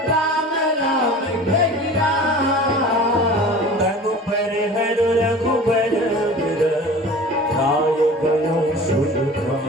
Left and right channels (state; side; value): normal; both; correlation 0.40